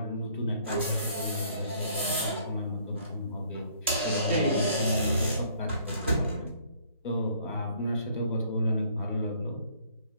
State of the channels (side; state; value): both; inverted; correlation -0.61